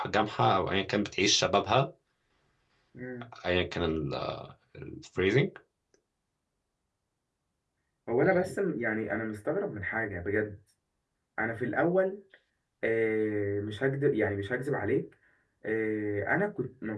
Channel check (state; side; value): identical; both; correlation 1.00